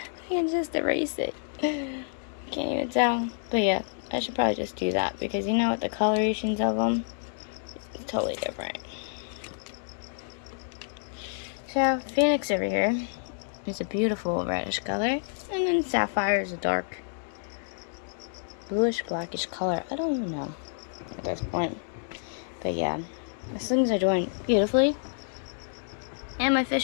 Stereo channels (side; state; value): right; silent; digital silence